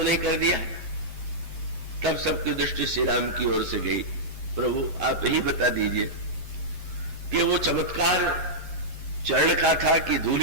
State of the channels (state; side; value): late; left; 11 ms